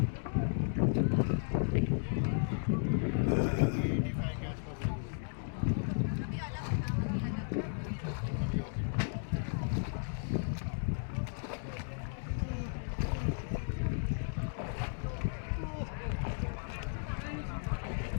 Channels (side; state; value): right; silent; digital silence